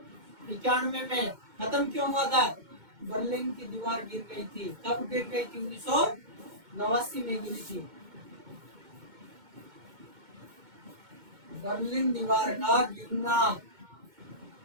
में। खत्म क्यों हुआ था? बर्लिन की दीवार गिर गई थी। कब गिर गई थी? 1989 में गिरी थी। बर्लिन दीवार का गिरना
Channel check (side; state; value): left; late; 2.1 ms